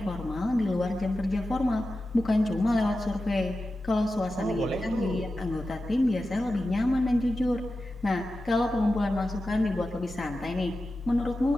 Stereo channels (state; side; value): normal; both; correlation 0.93